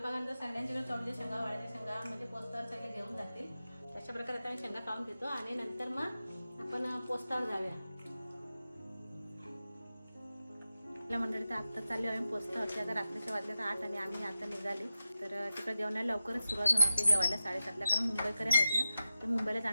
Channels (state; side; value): inverted; both; correlation -0.92